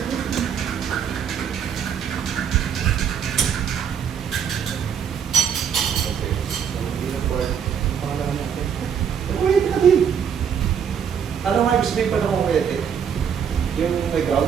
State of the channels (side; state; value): left; quieter; 7.7 dB